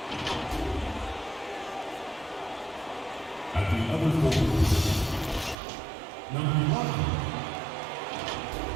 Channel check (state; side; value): drops out; left; at 5.6 s